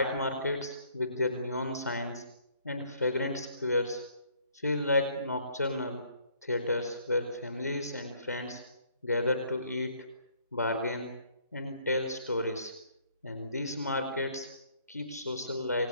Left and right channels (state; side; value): inverted; both; correlation -0.63